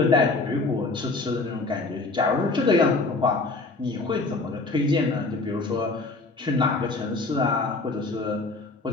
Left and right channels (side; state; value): right; quieter; 3.5 dB